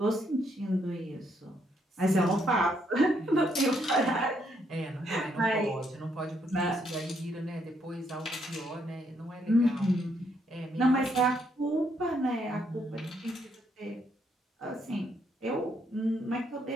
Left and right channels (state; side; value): normal; both; correlation 0.73